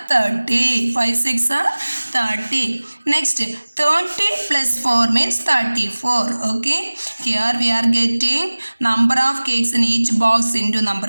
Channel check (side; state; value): both; inverted; correlation -1.00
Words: 30. 5 6 are 30. Next, 30 plus 4 means 34. Okay, here we are getting number of cakes in each box into number